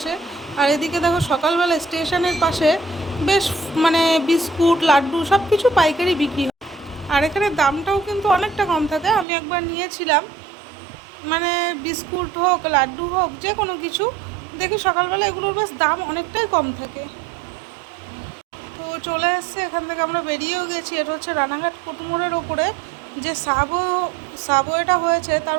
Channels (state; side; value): drops out; left; at 9.2 s